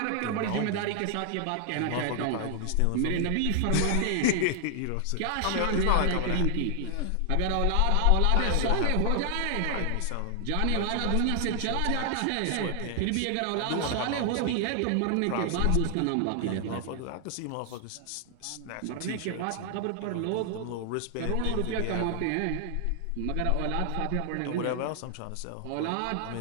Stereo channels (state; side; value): different; both; correlation 0.00